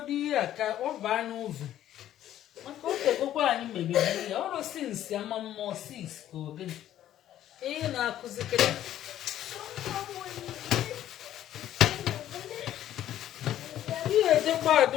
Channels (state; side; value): quieter; right; 12.1 dB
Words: ihe a ka ọ baa n'ụzọ maka o tegokwa anyị mebiri ya ọrụ sinsi ama mmụọ 6 ka ogene ihe na-akụzikere ihe ejekwa ada